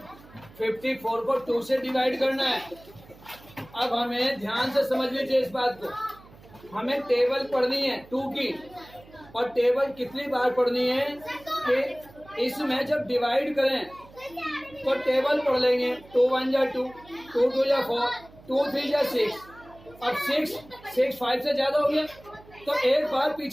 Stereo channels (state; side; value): noise; right; hum, 23 dB below the sound